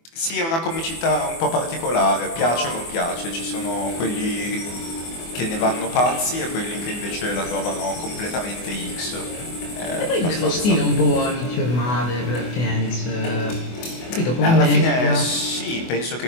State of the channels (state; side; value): late; right; 24 ms